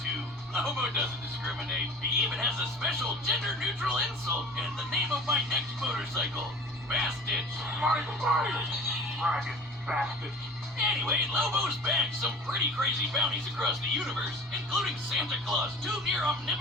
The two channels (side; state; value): both; normal; correlation 0.41